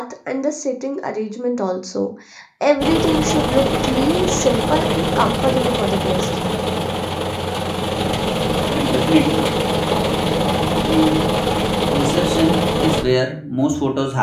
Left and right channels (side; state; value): both; identical; correlation 1.00